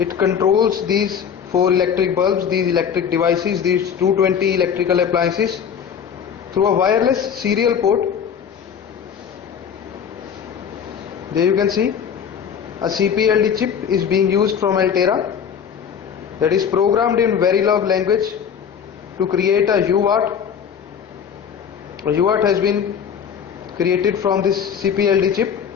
controls these 4 electric bulbs, these electric devices, these 220 electrical appliances through a wireless serial port. There you can see a CPLD chip is being used from Altera that is programmed in Verilog language to create a UART. A UART has been created from this CPLD chip.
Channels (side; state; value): right; quieter; 7.6 dB